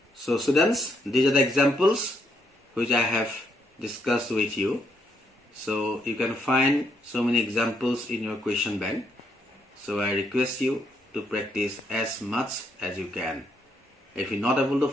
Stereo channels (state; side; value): normal; both; correlation 0.75